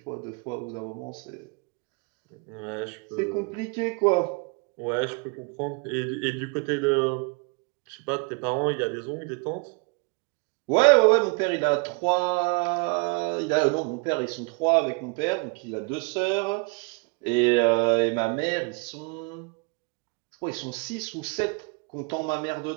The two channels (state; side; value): quieter; left; 31.2 dB